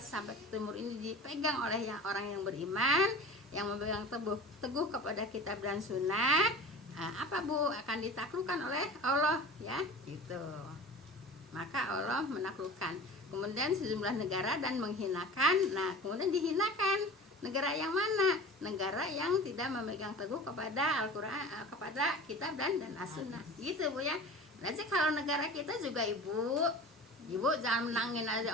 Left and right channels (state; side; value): normal; both; correlation 0.37